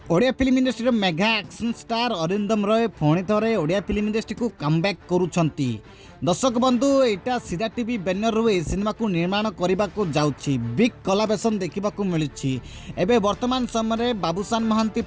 Odia film industry mega action star Arindam Roy पुणी थे Odia film industry को कमबैक करुछंती। दर्शक बंधु एटा सीधा टीवी बैनर रू सिनेमा को निर्माण करने को जाउछि बिग कोलाबोरेशन देखा मिलूँ। एबे वर्तमान समय बाबूशान महांती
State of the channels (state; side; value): identical; both; correlation 1.00